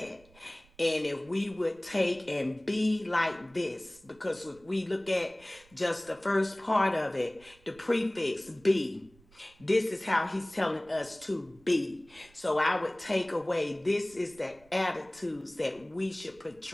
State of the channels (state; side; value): noise; right; rumble, 28 dB below the sound